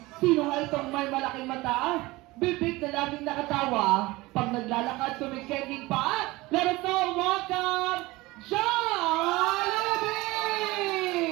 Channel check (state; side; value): quieter; left; 20.7 dB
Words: Sino nga itong may malaking mata? Bibig na laging nakatawa. Pag naglalakad, tumikending pa. Let us all welcome Jollibee!